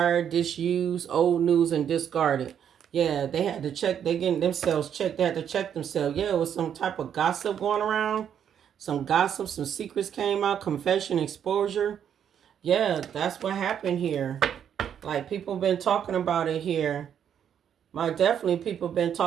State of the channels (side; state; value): left; quieter; 8.8 dB